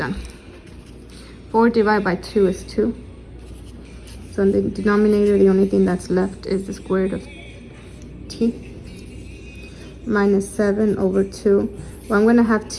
4 divided by 2 is 2. So in the denominator, the only thing that's left is the square root of t minus 7 over 2. Well, I'm going to have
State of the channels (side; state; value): both; identical; correlation 1.00